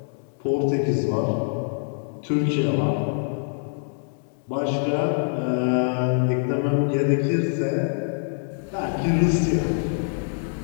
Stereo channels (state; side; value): silent; right; digital silence